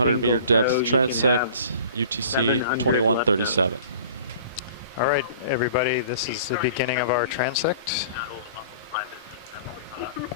meter single depth tow, you can transect, have UTC 700 2137. All right, everybody, this is the beginning of our transect.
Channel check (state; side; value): inverted; both; correlation -0.45